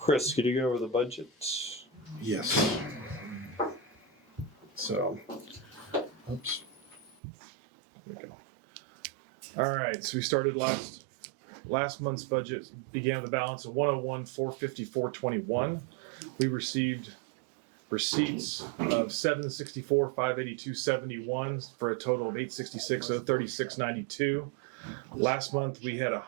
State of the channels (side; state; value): left; drops out; at 7.2 s